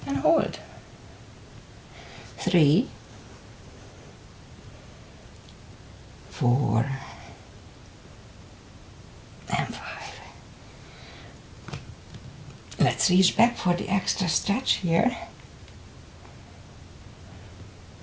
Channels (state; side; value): identical; both; correlation 1.00